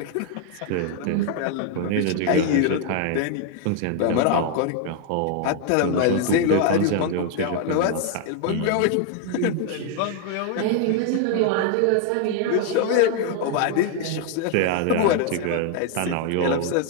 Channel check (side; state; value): both; different; correlation 0.01